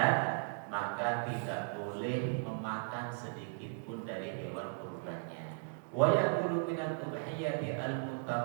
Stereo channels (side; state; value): left; silent; digital silence